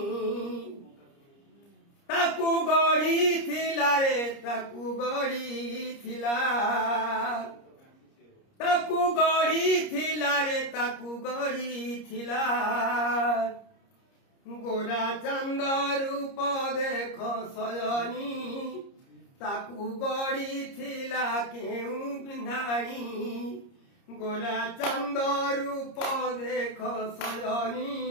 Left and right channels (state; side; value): late; right; 30 ms